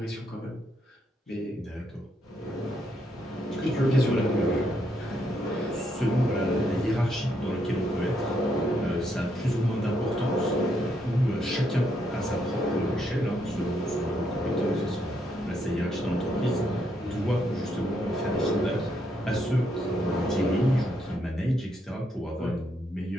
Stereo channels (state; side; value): normal; both; correlation 0.76